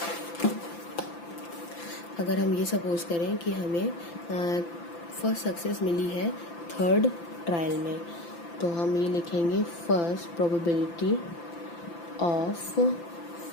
अगर हम ये सपोज करें कि हमें फर्स्ट सक्सेस मिली है थर्ड ट्रायल में, तो हम ये लिखेंगे first probability of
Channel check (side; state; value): right; late; 5.9 ms